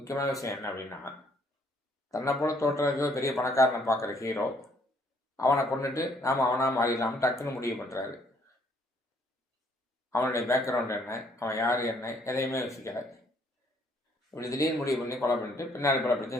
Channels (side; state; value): both; normal; correlation 0.65